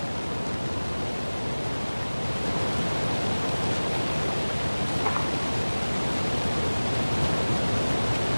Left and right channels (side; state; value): both; inverted; correlation -1.00